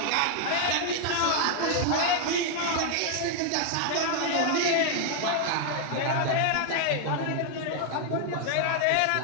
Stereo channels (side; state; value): both; different; correlation 0.00